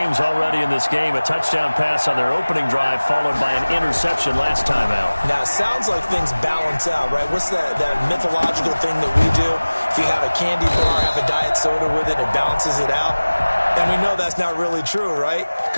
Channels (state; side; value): inverted; both; correlation -1.00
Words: already in this game. A touchdown pass on their opening drive, followed by an interception last time out. Now, it sounds like things balance out, right? What's that mythological thing that we do? If you have a candy bar, have a diet soda with it, it balances it out. And we know that's not really true, right?